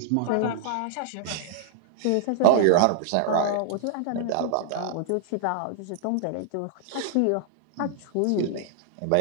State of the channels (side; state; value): both; different; correlation -0.01